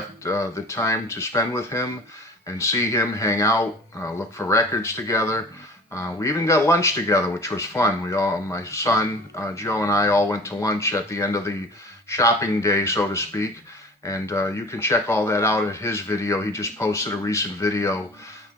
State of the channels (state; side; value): normal; both; correlation 0.43